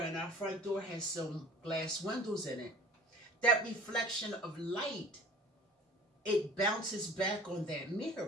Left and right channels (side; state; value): both; normal; correlation 0.45